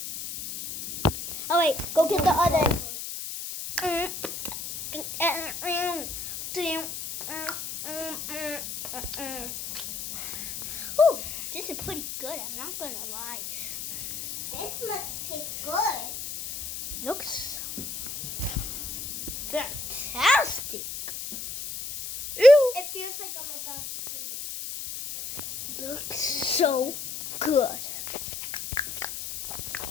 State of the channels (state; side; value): noise; left; hiss, 7 dB below the sound